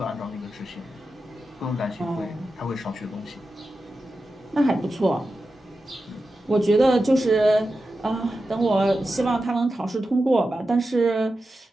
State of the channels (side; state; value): both; normal; correlation 0.91